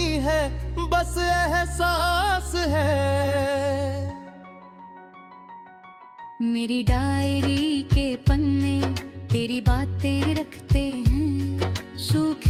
है बस एहसास है। मेरी डायरी के पन्ने तेरी बातें रखते हैं,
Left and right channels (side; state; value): both; identical; correlation 1.00